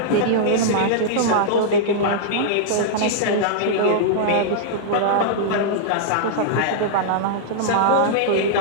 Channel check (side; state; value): both; different; correlation -0.02